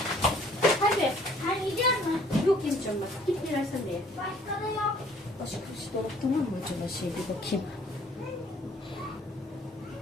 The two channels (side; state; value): both; normal; correlation 0.58